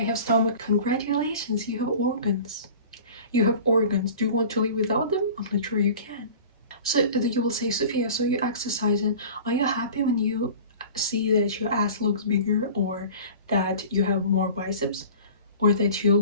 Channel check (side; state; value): both; inverted; correlation -0.41